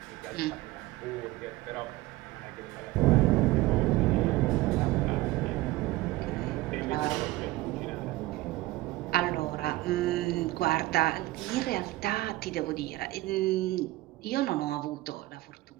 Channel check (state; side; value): quieter; left; 18.4 dB